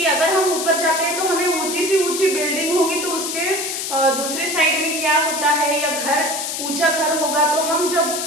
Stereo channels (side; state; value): left; noise; hiss, 4 dB below the sound